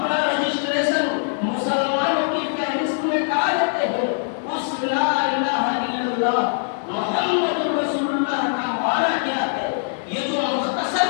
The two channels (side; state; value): right; silent; digital silence